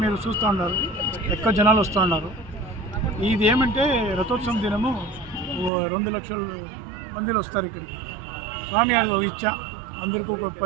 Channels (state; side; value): drops out; left; at 5.7 s